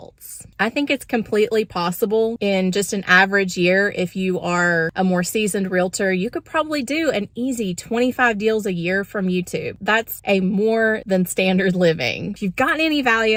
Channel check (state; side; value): identical; both; correlation 1.00